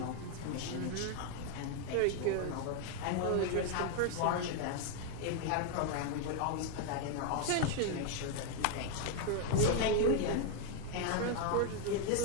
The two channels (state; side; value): different; both; correlation 0.01